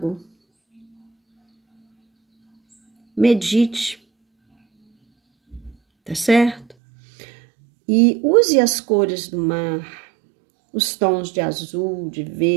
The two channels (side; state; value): left; drops out; at 6.8 s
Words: Medite, tá certo? E use as cores do mar, os tons de azul, de